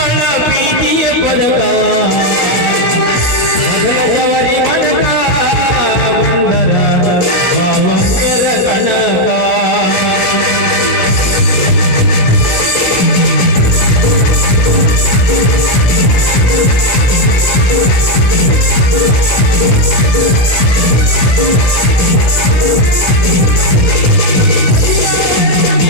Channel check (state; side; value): late; right; 17 ms